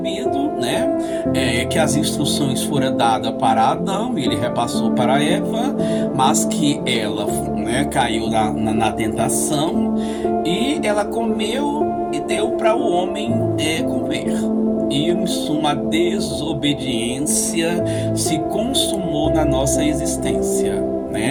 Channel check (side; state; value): both; identical; correlation 1.00